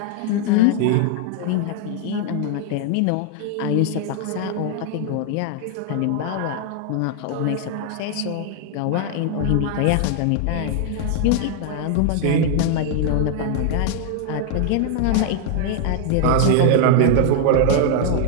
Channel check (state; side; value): different; both; correlation 0.00